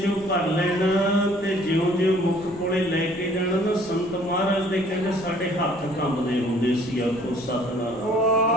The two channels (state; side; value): noise; left; rumble, 21 dB below the sound